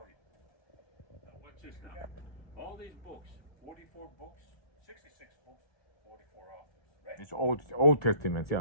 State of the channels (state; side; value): late; right; 1.3 ms